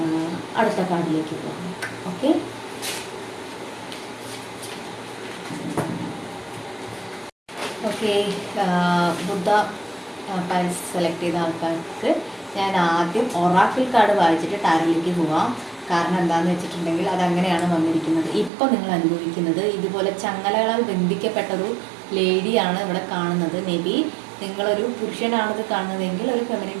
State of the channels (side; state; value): left; drops out; at 18.5 s